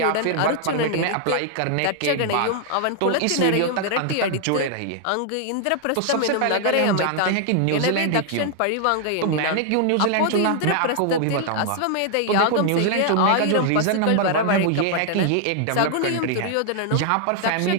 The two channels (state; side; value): different; both; correlation 0.00